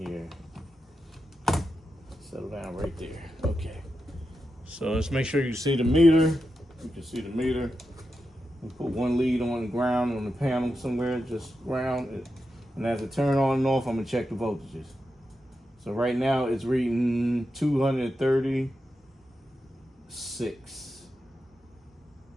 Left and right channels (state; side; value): normal; both; correlation 0.88